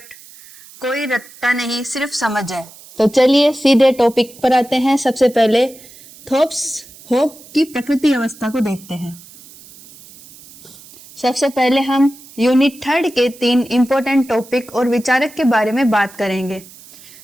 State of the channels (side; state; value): right; noise; hiss, 21 dB below the sound